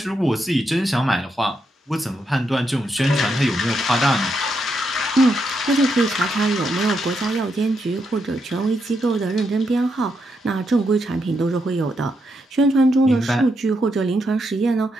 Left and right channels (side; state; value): both; normal; correlation 0.81